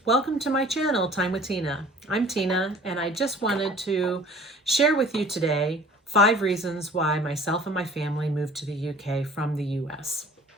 welcome to my channel, Time with Tina. I'm Tina, and I just wanted to share with you today 5 reasons why myself and my family moved to the UK from the US.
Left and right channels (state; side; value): normal; both; correlation 0.49